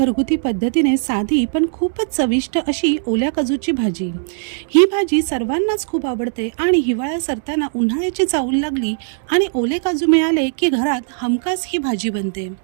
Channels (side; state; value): left; silent; digital silence